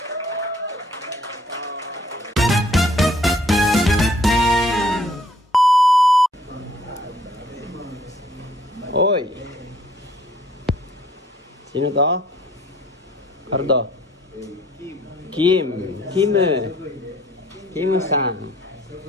Oy. Sino to? Cardo. Kim-san.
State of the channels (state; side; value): normal; both; correlation 0.60